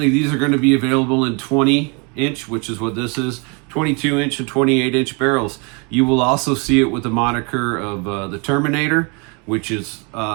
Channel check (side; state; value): left; quieter; 32.1 dB